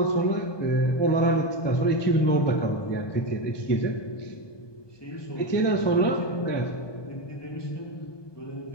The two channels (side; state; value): right; late; 1.2 ms